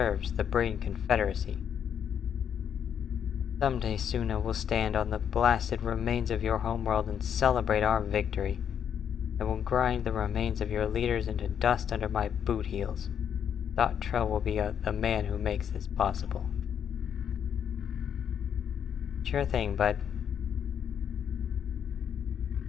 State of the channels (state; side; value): quieter; right; 8.4 dB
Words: the Breen Confederacy. Someday Suna will stand on the blasted remains of your homeworld and celebrate our victory. I will grind the remains of your leaders into dust under my boot heels. Thod Trell will be the man who makes this possible. Sure thing, bud.